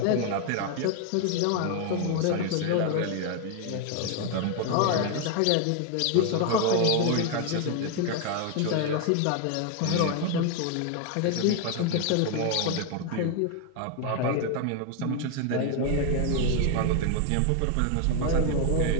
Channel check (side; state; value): both; different; correlation 0.01